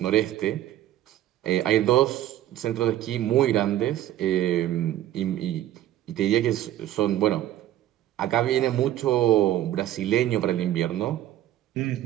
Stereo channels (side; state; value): left; quieter; 13.1 dB